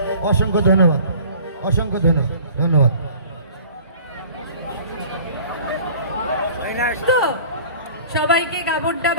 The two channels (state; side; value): inverted; both; correlation -0.47